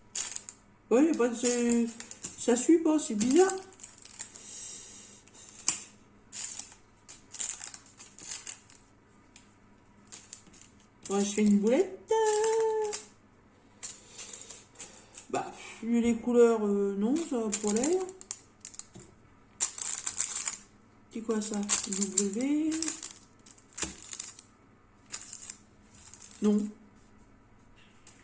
Oui, il n'y a pas de... Ça suit pas, c'est bizarre. Bon, je fais une boulette. Bah, vu les couleurs, non, ça va pour l'air. C'est quoi ça? W. Non.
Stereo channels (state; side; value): identical; both; correlation 1.00